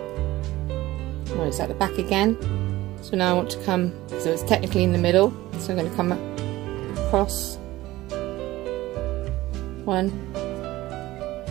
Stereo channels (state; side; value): quieter; left; 17.2 dB